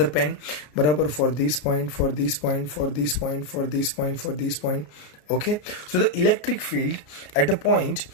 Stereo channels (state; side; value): late; right; 33 ms